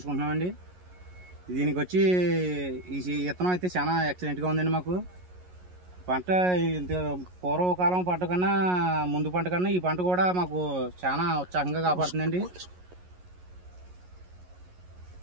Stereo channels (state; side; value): late; left; 11 ms